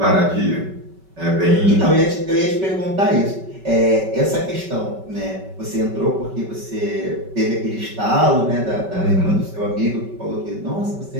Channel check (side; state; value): left; late; 5.2 ms